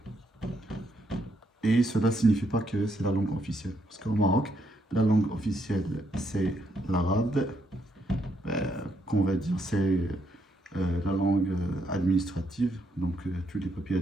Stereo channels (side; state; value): both; normal; correlation 0.75